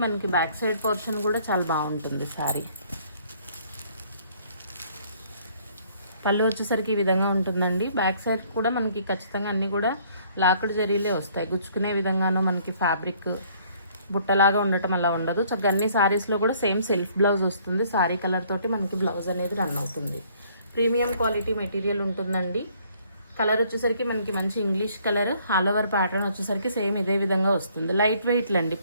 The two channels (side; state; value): both; inverted; correlation -0.62